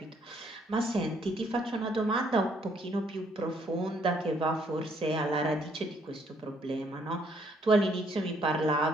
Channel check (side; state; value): both; normal; correlation 0.68